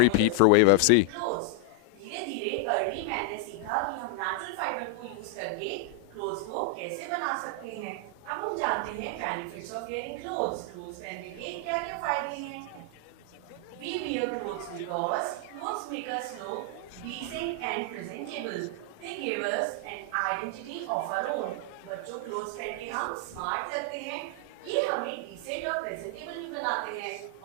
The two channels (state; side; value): different; both; correlation 0.00